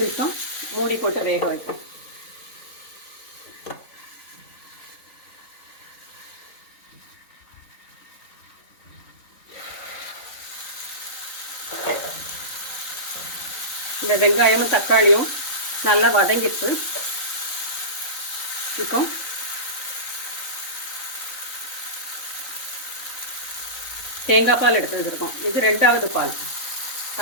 நிமிஷம் மூடி போட்டு வேக வைப்போம். இந்த வெங்காயமும் தக்காளியும் நல்லா வதங்கிட்டு இப்போ தேங்காய் பால் எடுத்து வச்சுருக்கோம். இது 2வது பால்,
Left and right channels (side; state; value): right; late; 3.9 ms